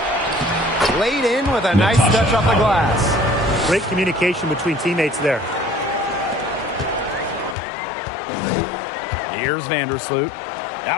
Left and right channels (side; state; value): right; drops out; at 7.6 s